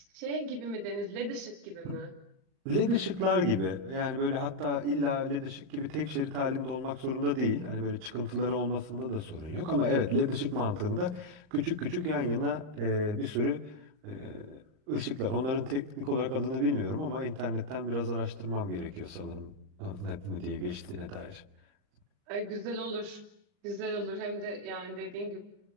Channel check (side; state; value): left; late; 39 ms